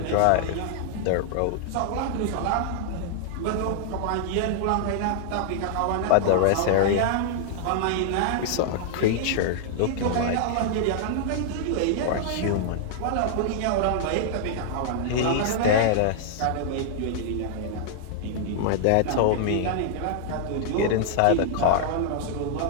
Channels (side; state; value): both; different; correlation -0.01